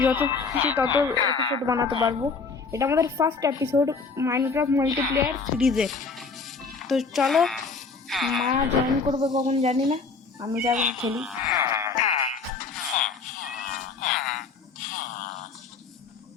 যত খুশি তত এপিসোড বানাতে পারবো। এটা আমাদের ফার্স্ট এপিসোড মাইনক্রাফট মাল্টিপ্লেয়ার সিরিজের। তো চলো, মা জয়েন করবে কখন জানি না, আমি যাবো খেলি।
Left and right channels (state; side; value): quieter; right; 4.6 dB